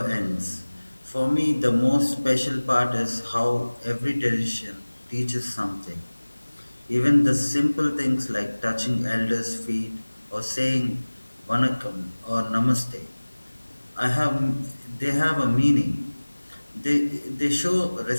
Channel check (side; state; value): both; inverted; correlation -1.00